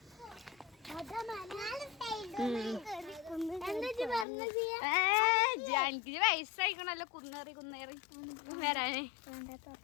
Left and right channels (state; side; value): drops out; right; at 4.2 s